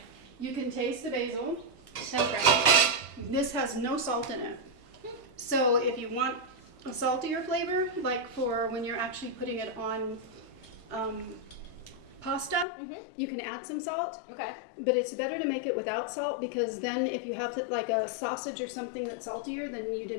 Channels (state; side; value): drops out; right; at 12.7 s